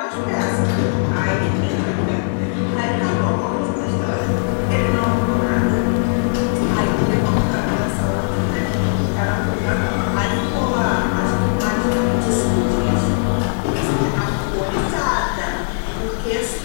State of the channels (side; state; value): right; silent; digital silence